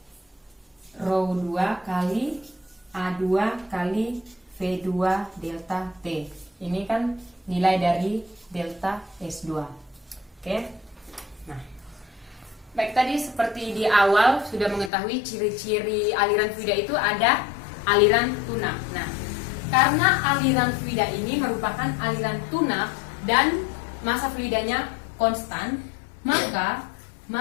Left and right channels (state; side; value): drops out; right; at 14.9 s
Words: rho 2 kali A2 kali V2 delta T. Ini kan nilai dari delta S2. Oke. Nah, baik, tadi seperti di awal sudah mengetahui ciri-ciri aliran fluida itu ada aliran tunak. Nah, karena aliran fluida ini merupakan aliran tunak dan massa fluidanya konstan, maka